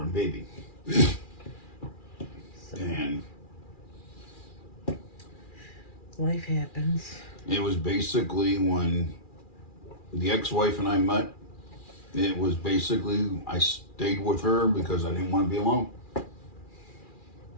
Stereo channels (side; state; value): right; late; 2.4 ms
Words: baby. And Life happens. it was basically when the ex-wife and I met, it was basically, I stayed with her because I didn't want to be alone.